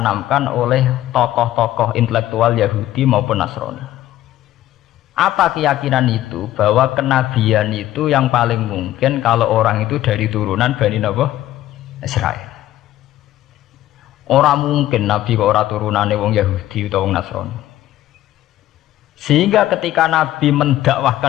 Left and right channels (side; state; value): right; quieter; 14.0 dB